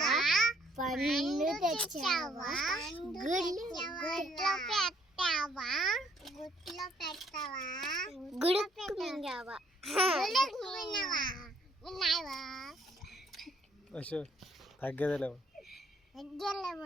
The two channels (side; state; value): both; normal; correlation 0.65